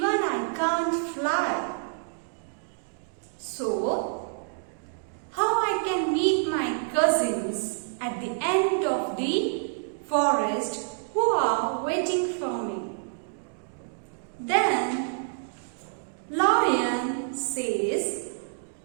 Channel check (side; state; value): left; silent; digital silence